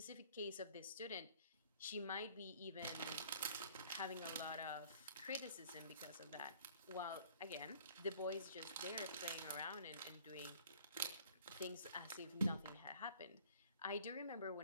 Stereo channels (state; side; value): inverted; both; correlation -0.54